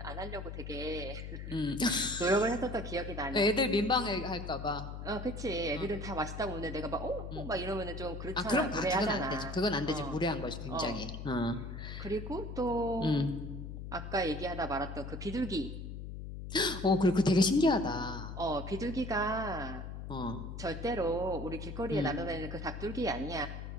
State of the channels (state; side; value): noise; left; hum, 8 dB below the sound